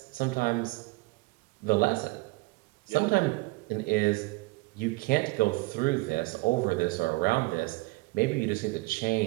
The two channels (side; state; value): left; quieter; 24.0 dB